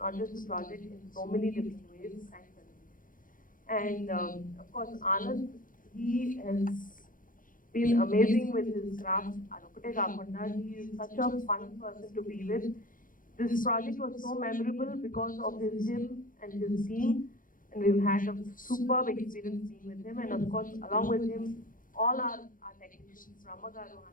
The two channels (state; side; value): late; right; 0.39 ms